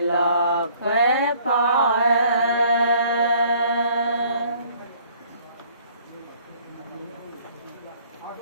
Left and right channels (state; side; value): inverted; both; correlation -0.58